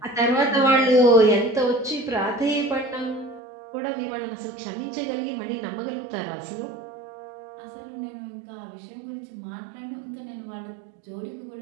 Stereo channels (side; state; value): left; drops out; at 3.4 s